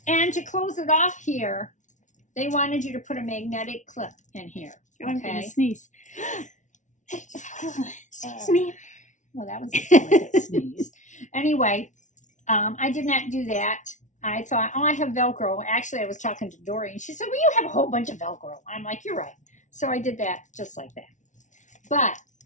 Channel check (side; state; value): right; late; 0.36 ms